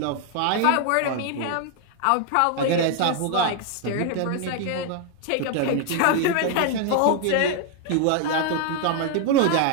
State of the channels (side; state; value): both; different; correlation 0.00